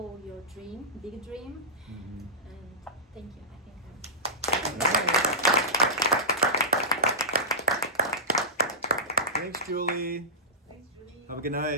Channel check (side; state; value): both; normal; correlation -0.17